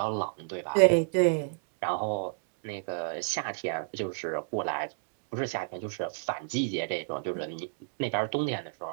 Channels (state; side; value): silent; left; digital silence